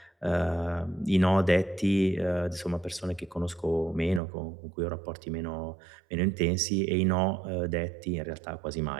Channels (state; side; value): drops out; left; at 4.2 s